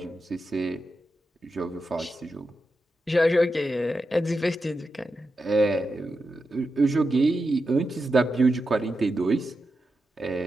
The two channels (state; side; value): normal; both; correlation 0.89